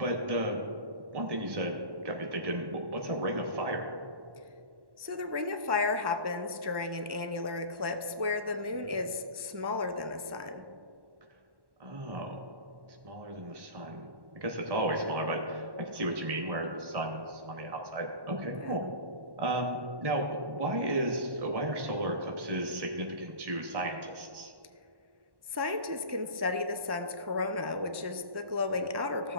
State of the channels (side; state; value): left; late; 1.1 ms